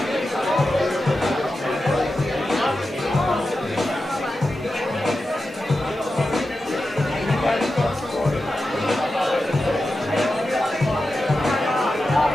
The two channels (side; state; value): both; normal; correlation 0.91